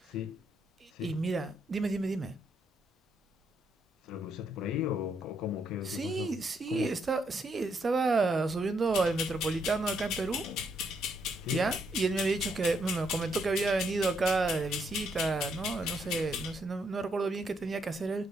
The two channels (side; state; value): both; normal; correlation 0.75